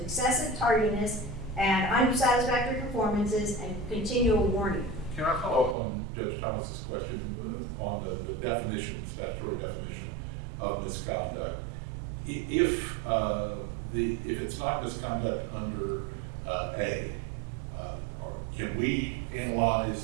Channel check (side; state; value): left; drops out; at 5.8 s